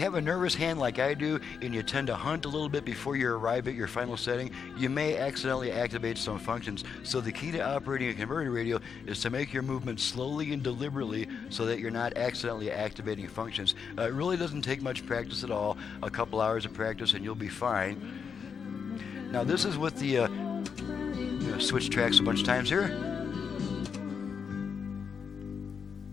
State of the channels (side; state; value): right; quieter; 6.4 dB